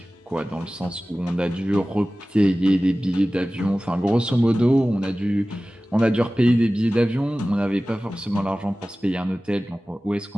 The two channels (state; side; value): normal; both; correlation 0.97